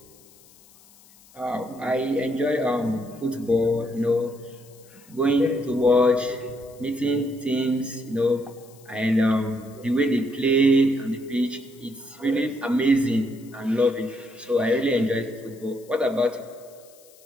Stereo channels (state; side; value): noise; left; hiss, 26 dB below the sound